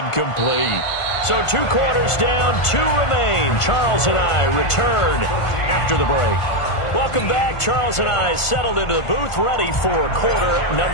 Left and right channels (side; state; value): right; late; 1.5 ms